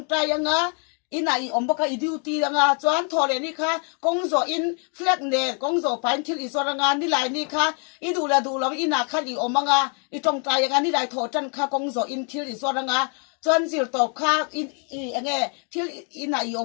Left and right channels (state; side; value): quieter; right; 39.3 dB